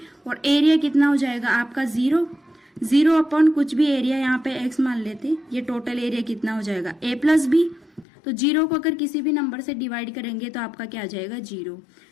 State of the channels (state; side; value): drops out; right; at 8.1 s